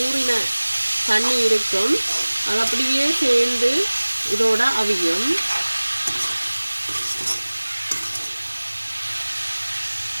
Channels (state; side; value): inverted; both; correlation -1.00